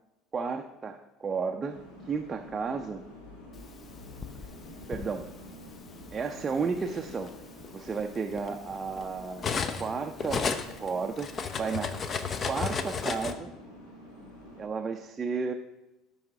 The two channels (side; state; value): both; normal; correlation 0.71